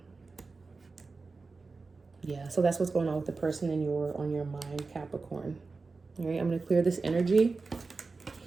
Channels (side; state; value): left; quieter; 4.1 dB